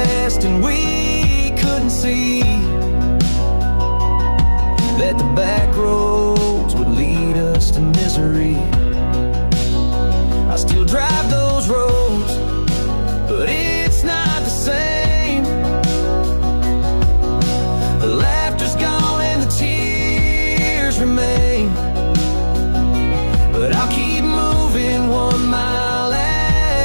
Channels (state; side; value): inverted; both; correlation -1.00